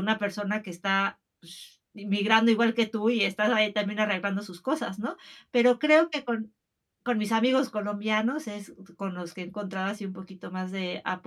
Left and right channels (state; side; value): identical; both; correlation 1.00